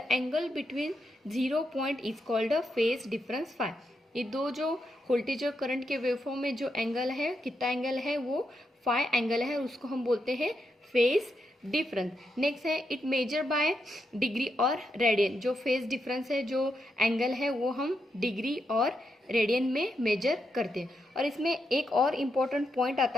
angle between zero point is called a phase difference phi. ये दो जो वोल्टेज और करंट के वेवफॉर्म में जो एंगल है, कितना एंगल है? वो फाई एंगल है. उसको हम बोलते हैं फेज डिफरेंस. नेक्स्ट है इट मेजर बाय डिग्री और रेडियन. जो फेज डिफरेंस है, जो एंगल है वो हम डिग्री और रेडियन में मेजर करते हैं. और इसमें एक और इम्पोर्टेंट पॉइंट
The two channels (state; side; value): normal; both; correlation 0.83